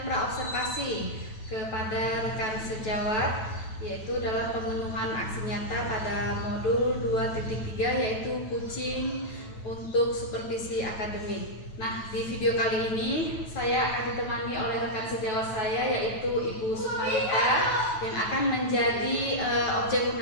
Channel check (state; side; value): late; right; 9.1 ms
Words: praobservasi kepada rekan sejawat, yaitu dalam pemenuhan aksi nyata pada modul 2.3 yaitu kucing untuk supervisi akademik. Nah, di video kali ini saya akan ditemani oleh rekan sejawat saya yaitu Ibu Sukmanita yang akan menjadi objek